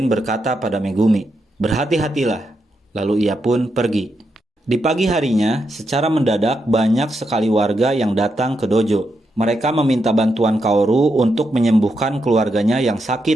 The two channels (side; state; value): both; normal; correlation 0.83